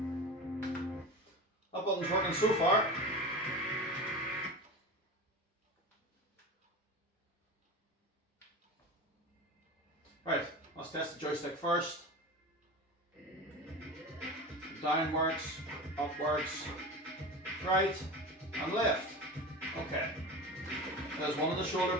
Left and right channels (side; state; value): both; normal; correlation 0.29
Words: That button's working so far. Right, let's test the joystick first. Down works, up works, right and left. Okay. There's one of the shoulder